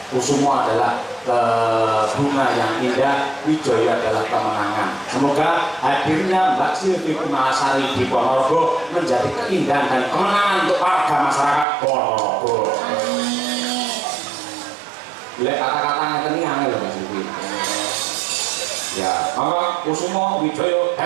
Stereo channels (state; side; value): drops out; left; at 11.7 s